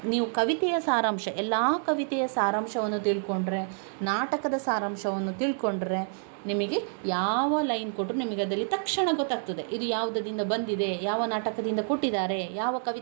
ನೀವು ಕವಿತೆಯ ಸಾರಾಂಶ, ಎಲ್ಲ ಕವಿತೆಯ ಸಾರಾಂಶವನ್ನು ತಿಳ್ಕೊಂಡ್ರೆ, ನಾಟಕದ ಸಾರಾಂಶವನ್ನು ತಿಳ್ಕೊಂಡ್ರೆ ನಿಮಗೆ ಯಾವ ಲೈನ್ ಕೊಟ್ಟರು ನಿಮಗೆ ಅದರಲ್ಲಿ ತಕ್ಷಣ ಗೊತ್ತಾಗ್ತದೆ. ಇದು ಯಾವುದರಿಂದ ಬಂದಿದೆ, ಯಾವ ನಾಟಕದಿಂದ ಕೊಟ್ಟಿದ್ದಾರೆ, ಯಾವ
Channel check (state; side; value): silent; left; 56 dB below the other